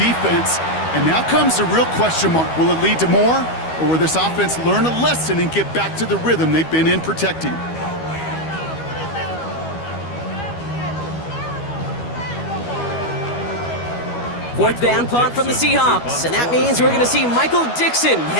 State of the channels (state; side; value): late; right; 12 ms